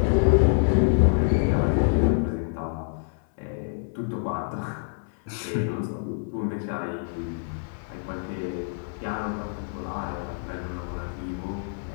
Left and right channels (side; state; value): right; silent; 61 dB below the other